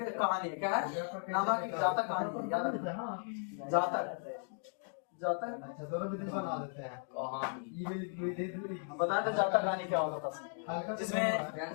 कहानी है। क्या है? नामा की जातक कहानी। जातक जाता है। अच्छा दोनों विधि बना देते हैं। कहाँ ये विधि बताया था जाता कहानी क्या होता था, हल्का जिसमें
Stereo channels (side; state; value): right; silent; 53 dB below the other